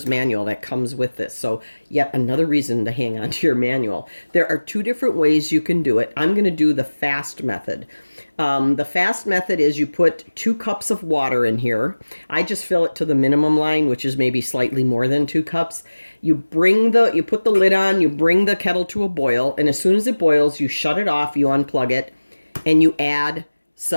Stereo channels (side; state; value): both; inverted; correlation -1.00